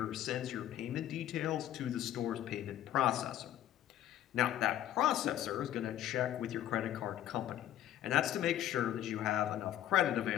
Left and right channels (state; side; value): quieter; right; 12.0 dB